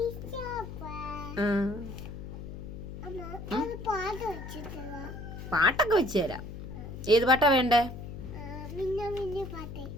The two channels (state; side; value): noise; left; hum, 9 dB below the sound